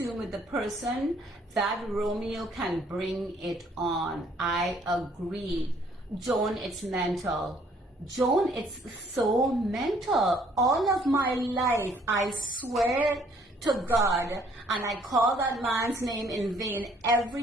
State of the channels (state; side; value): normal; both; correlation 0.62